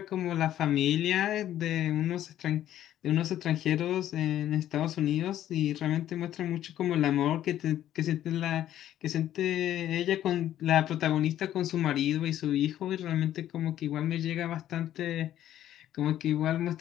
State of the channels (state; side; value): quieter; right; 12.1 dB